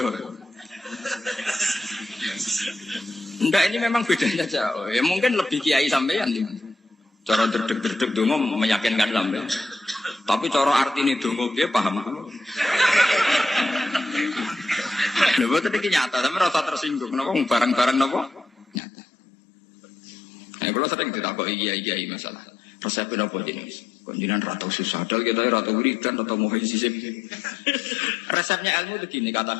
Enggak, ini memang bedanya jauh. Ya mungkin lebih kiai sampean. Cara derdek-derdek dongo meyakinkan sampean. Tapi cara artine dongo piye paham. Lha boten iki nyata, tapi rasa tersinggung. Napa barang-barang napa? Nyata. Nah, kalau sering ditakoki kiai-kiai masalah. Resepnya apa jenis? Konjinan rata susah, dal kita rata wiridan, rata muhizisip. Resepnya ilmu itu gini kata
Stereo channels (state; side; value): drops out; right; at 18.8 s